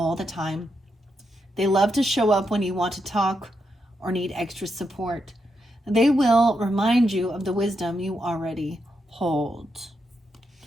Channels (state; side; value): normal; both; correlation 0.83